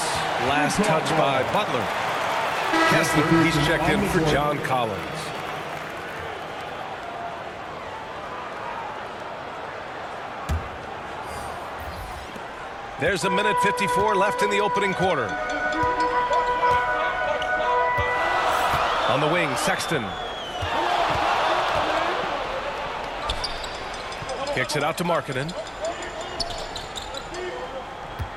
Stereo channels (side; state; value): both; identical; correlation 1.00